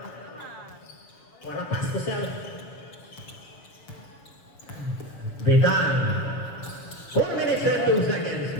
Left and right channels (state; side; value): late; right; 6.7 ms